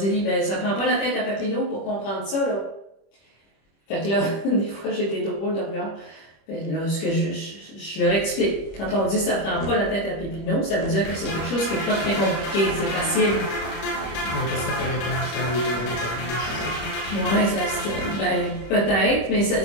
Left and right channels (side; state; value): right; late; 25 ms